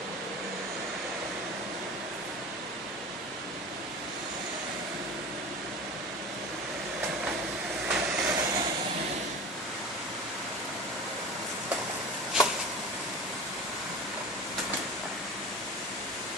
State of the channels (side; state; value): both; normal; correlation 0.35